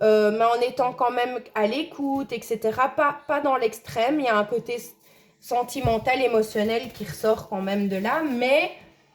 en étant quand même à l'écoute, etc. Pas dans l'extrême, il y a un côté sentimental, émotionnel qui ressort quand même de là, mais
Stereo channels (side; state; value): both; identical; correlation 1.00